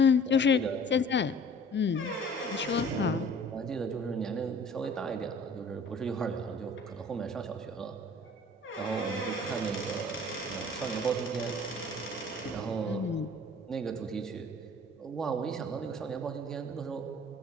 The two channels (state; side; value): normal; both; correlation 0.49